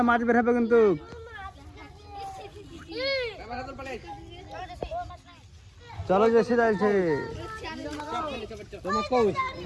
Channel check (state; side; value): identical; both; correlation 1.00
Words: মাছ বের হবে কিন্তু। চলো জেসি যাইছে।